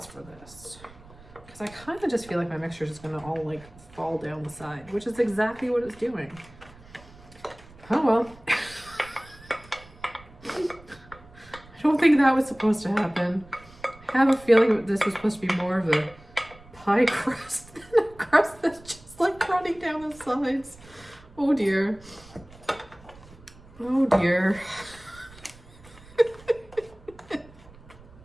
for this. Because I kind of just feel like my mixture is just going to all like fall down the side, which is exactly what it's doing. Oh well. I don't think that was supposed to happen. I have a feeling that this was supposed to be more of a pie crust than a crust that's just like running down the sides. Oh dear. Oh dear.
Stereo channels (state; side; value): noise; right; rumble, 22 dB below the sound